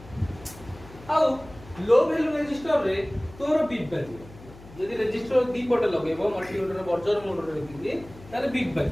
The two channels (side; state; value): left; noise; hum, 19 dB below the sound